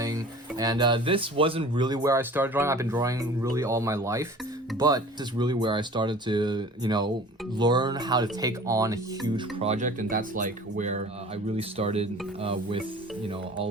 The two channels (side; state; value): both; normal; correlation 0.44